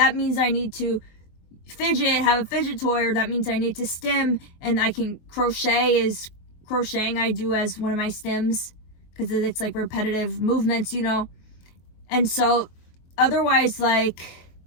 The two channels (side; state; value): right; late; 23 ms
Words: means I need to fidget, have a fidget toy, or that means I need to stim, and I can crocheting I do as one of my stims because it's like repetitive movements, you know. And so otherwise, like,